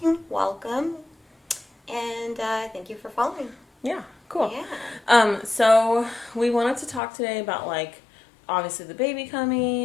welcome, and thank you for following. Yeah, cool. Yeah. So we wanted to talk today about obviously the baby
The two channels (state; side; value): drops out; right; at 7.0 s